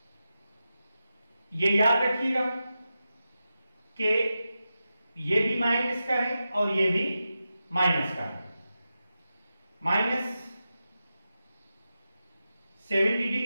ये याद रखिएगा कि ये भी माइनस का है और ये भी माइनस का है। -70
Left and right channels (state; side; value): inverted; both; correlation -0.91